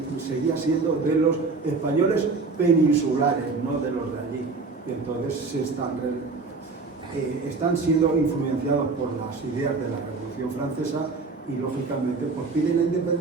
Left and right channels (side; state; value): left; quieter; 4.1 dB